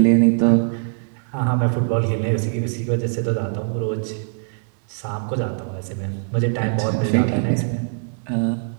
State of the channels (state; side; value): silent; left; 64 dB below the other